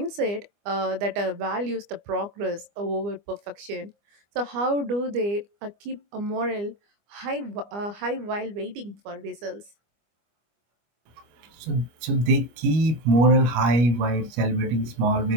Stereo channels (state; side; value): late; left; 25 ms